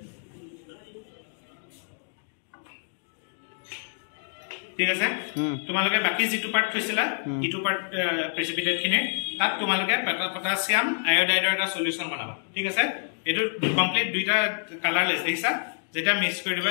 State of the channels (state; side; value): silent; right; digital silence